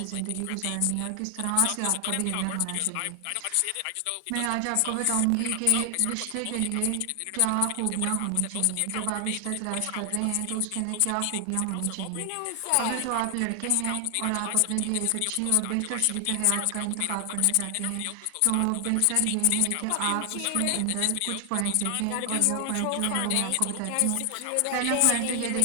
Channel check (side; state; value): both; different; correlation 0.00